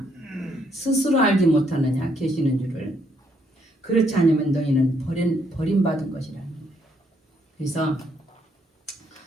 스스로 알지 못하느냐? 계시는 줄을. 그렇지 않으면 너희는 버림받은 것이라는 거예요. 그래서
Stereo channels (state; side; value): normal; both; correlation 0.72